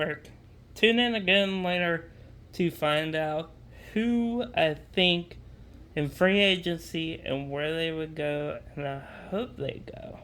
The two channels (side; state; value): both; identical; correlation 1.00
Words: Tune in again later to find out who I think in free agency and where they would go, and I hope they go.